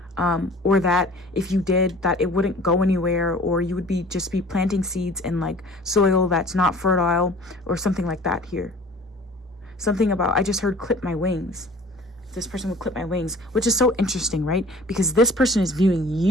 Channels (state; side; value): normal; both; correlation 0.47